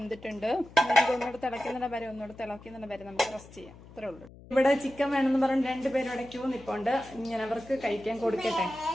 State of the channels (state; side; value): noise; left; hum, 20 dB below the sound